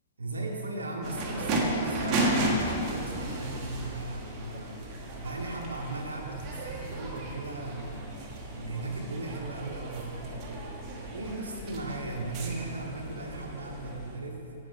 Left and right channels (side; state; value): both; inverted; correlation -0.32